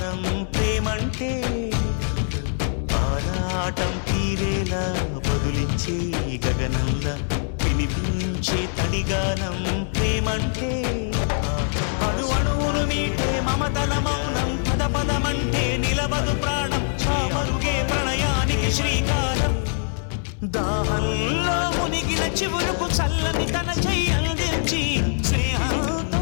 ప్రేమంటే ఆరాటం తీరేలా బదులిచ్చే గగనంలా వినిపించే తడిగానం ప్రేమంటే అణు అణువును మీటే మమతల మౌనం పద పదమంటే నిలవదు ప్రాణం పరుగే ప్రణయానికి శ్రీకారం దాహంలో మునిగిన చివురుకు చల్లని తన చెయ్యి అందించి స్నేహంతో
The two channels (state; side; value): silent; right; 62 dB below the other